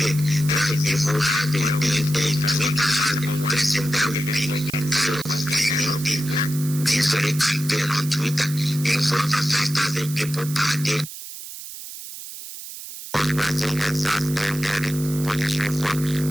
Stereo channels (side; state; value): right; noise; hiss, 12 dB below the sound